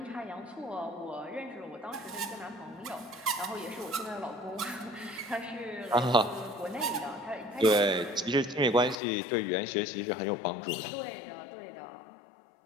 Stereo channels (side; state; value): right; drops out; at 9.0 s